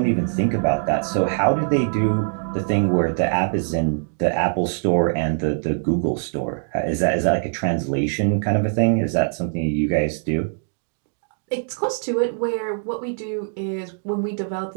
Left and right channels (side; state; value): left; silent; digital silence